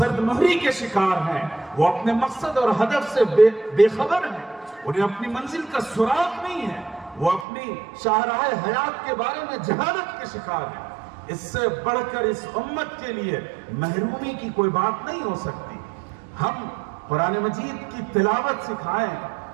مہری کے شکار ہیں، وہ اپنے مقصد اور ہدف سے بے خبر ہیں، انہیں اپنی منزل کا سراغ نہیں ہے، وہ اپنی شاہراہ حیات کے بارے میں جہالت کے شکار ہیں۔ اس سے بڑھ کر اس امت کے لیے محرومی کی کوئی بات نہیں ہو سکتی۔ ہم قرآن مجید کی تلاوت سکھائیں،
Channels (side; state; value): left; drops out; at 7.5 s